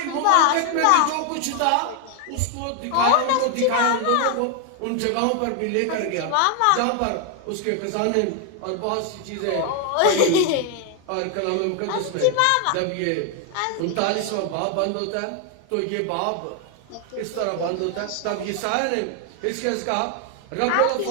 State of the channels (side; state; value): both; different; correlation 0.01